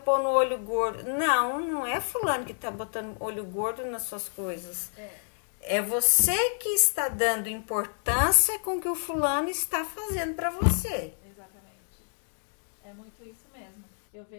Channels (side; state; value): right; silent; digital silence